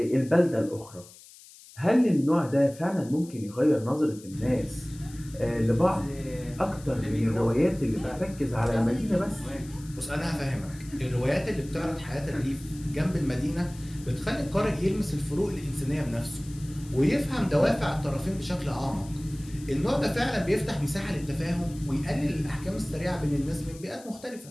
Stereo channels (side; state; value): left; noise; hiss, 21 dB below the sound